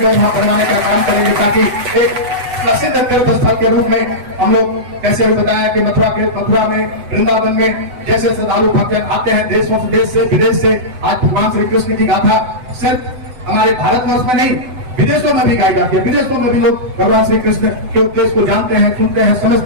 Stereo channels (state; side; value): late; left; 8.0 ms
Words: वहां बनवाने का काम करेंगे, ताकि एक प्रसिद्ध तीर्थ स्थल के रूप में हम लोग कैसे बताया कि मथुरा में, वृंदावन में जैसे श्रद्धालु भक्त आते हैं देश से विदेश से। आज भगवान श्री कृष्ण की गाथा सिर्फ हमारे भारतवर्ष में नहीं, विदेशों में भी गाई जाती है। विदेशों में भी लोग भगवान श्री कृष्ण के उपदेश को जानते हैं, सुनते हैं,